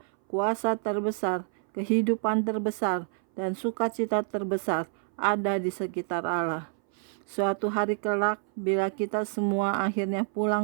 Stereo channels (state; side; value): silent; left; 59 dB below the other